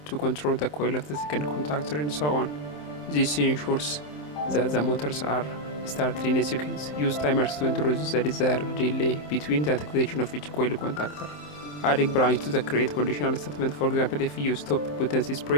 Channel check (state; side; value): late; right; 27 ms